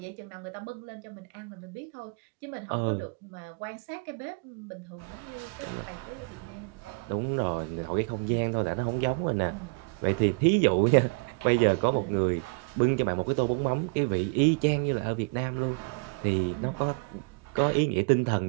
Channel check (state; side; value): quieter; left; 34.9 dB